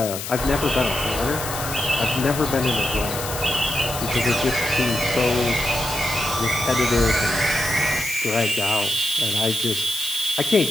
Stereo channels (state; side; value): noise; left; hiss, 7 dB below the sound